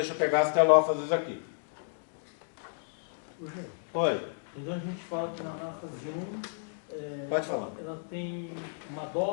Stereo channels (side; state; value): right; silent; digital silence